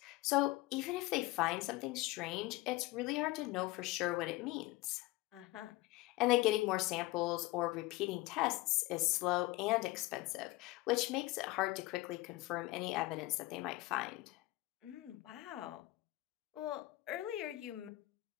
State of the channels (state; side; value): quieter; right; 19.6 dB